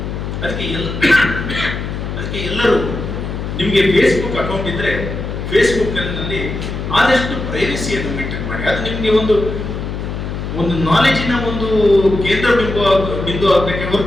ಅದಕ್ಕೆ ಎಲ್ಲರೂ ನಿಮಗೆ ಫೇಸ್ಬುಕ್ ಅಕೌಂಟ್ ಇದ್ದರೆ ಫೇಸ್ಬುಕ್ನಲ್ಲಿ ಆದಷ್ಟು ಪ್ರೈವಸಿಯನ್ನು ಮೇಂಟೈನ್ ಮಾಡಿ. ಅದು ನಿಮಗೆ ಒಂದು ನಾಲೆಜಿನ ಒಂದು ಕೇಂದ್ರ ಬಿಂದು ಆಗಬೇಕೆ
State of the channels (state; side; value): noise; left; hum, 5 dB below the sound